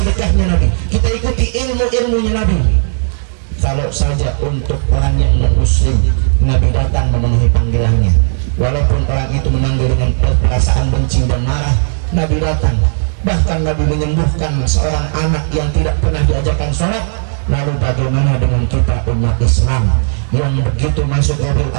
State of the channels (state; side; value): silent; left; digital silence